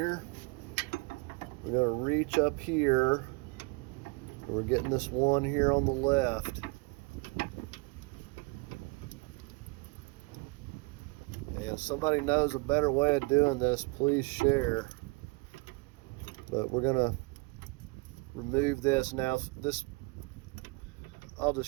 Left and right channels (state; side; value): quieter; left; 28.3 dB